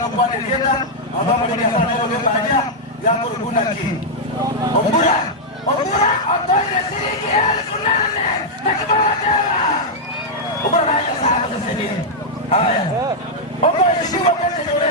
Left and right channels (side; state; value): both; normal; correlation -0.04